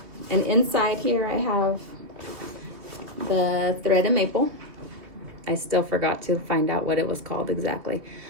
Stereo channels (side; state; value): left; late; 2.7 ms